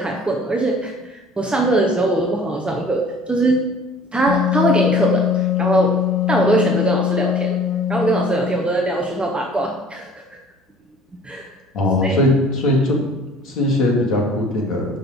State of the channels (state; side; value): normal; both; correlation 0.50